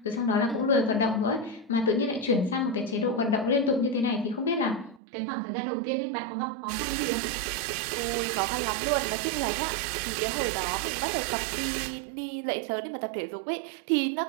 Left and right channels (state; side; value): drops out; left; at 5.0 s